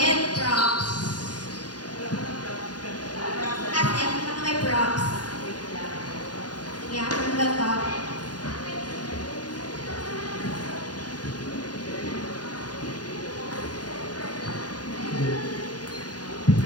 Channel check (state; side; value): late; right; 0.69 ms